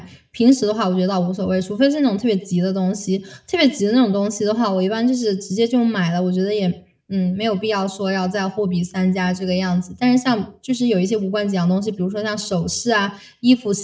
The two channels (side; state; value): both; identical; correlation 1.00